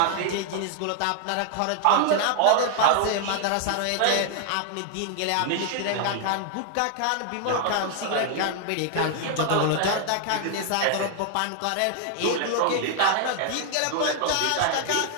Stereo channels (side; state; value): both; different; correlation 0.00